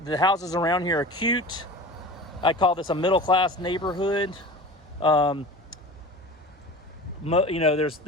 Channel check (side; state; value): both; normal; correlation 0.35